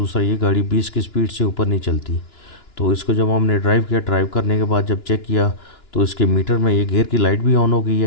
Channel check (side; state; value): right; late; 2.9 ms